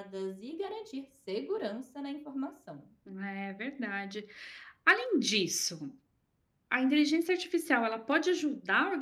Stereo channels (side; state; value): both; identical; correlation 1.00